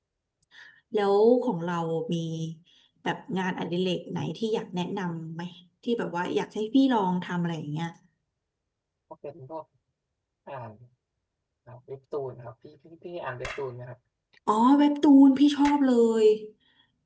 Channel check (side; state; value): both; identical; correlation 1.00